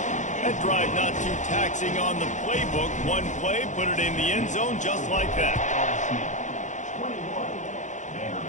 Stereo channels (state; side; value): late; right; 0.35 ms